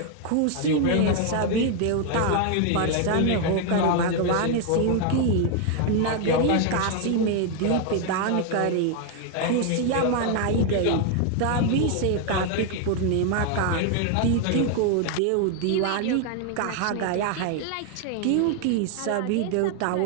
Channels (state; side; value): different; both; correlation 0.00